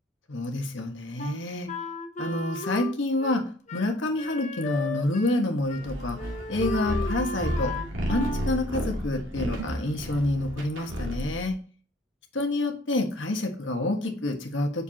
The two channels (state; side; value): normal; both; correlation 0.56